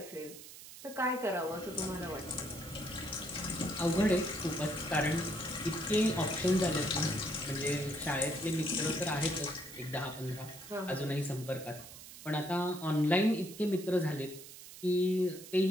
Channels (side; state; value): right; noise; hiss, 15 dB below the sound